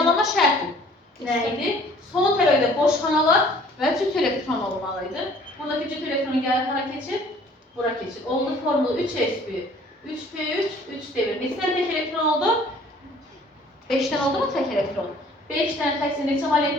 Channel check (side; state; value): both; normal; correlation 0.54